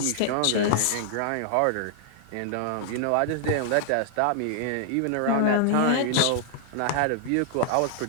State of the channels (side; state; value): both; different; correlation -0.01